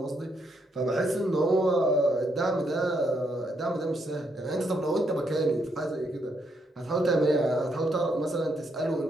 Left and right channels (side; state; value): both; normal; correlation 0.76